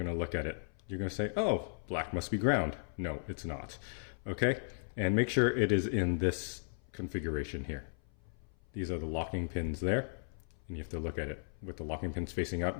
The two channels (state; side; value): silent; right; 54 dB below the other